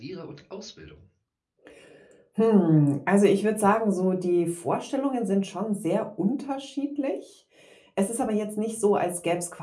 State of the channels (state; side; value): identical; both; correlation 1.00